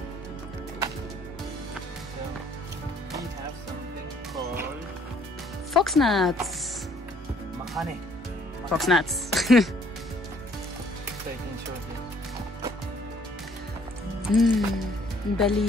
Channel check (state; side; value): normal; both; correlation 0.62